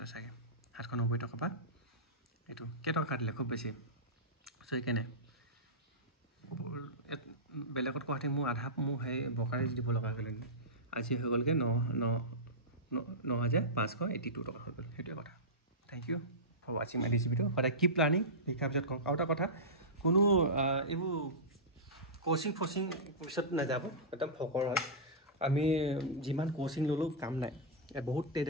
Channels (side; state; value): both; normal; correlation -0.15